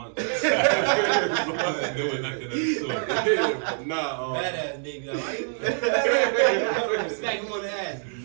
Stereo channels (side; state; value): left; silent; 61 dB below the other